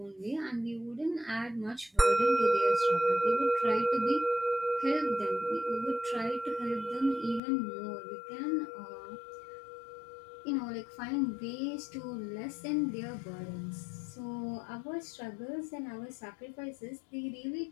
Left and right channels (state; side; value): drops out; right; at 7.4 s